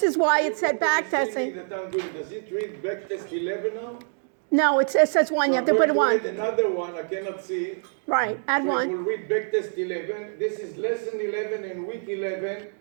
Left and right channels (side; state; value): left; silent; 59 dB below the other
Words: is why it said backtesting. Does it read backtest 11 now? No, it says 1. You have to put I'm one. going to add another one. I cannot see. Right, add So it one. will read backtest 11. This is lesson 11 and week 11